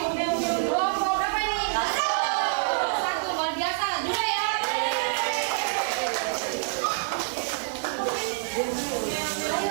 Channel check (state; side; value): silent; left; digital silence